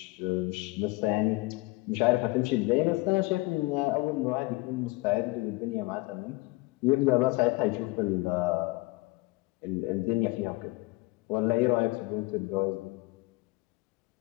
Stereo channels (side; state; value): right; quieter; 22.8 dB